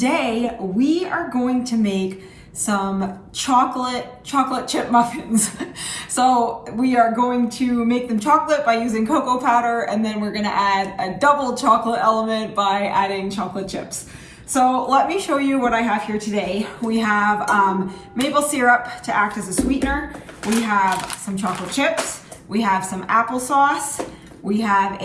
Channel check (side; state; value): both; identical; correlation 1.00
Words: we are going to make some chocolate chip muffins. So we are going to make them chocolate by using cocoa powder, and then we're gonna add a double chocolate element by adding chocolate chips. So let me show you what I have here today. We have maple syrup to act as a sweetener. We have some chocolate chips. We have some applesauce. We have